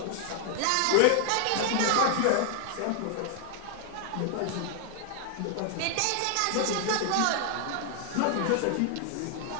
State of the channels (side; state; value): both; different; correlation 0.00